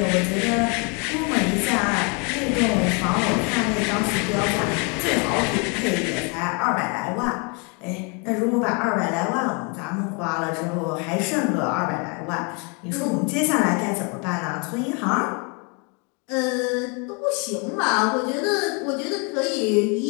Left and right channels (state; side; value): quieter; right; 33.7 dB